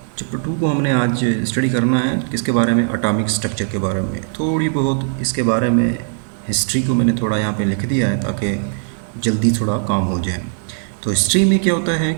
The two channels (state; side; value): silent; left; 65 dB below the other